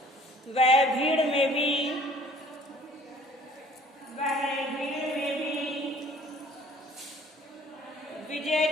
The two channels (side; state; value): both; normal; correlation 0.54